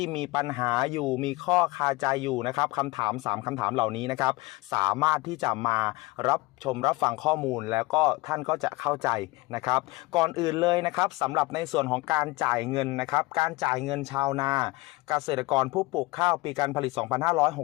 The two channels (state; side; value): quieter; right; 21.8 dB